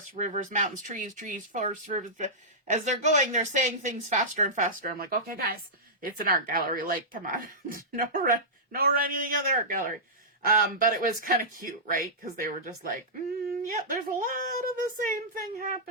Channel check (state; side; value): normal; both; correlation -0.14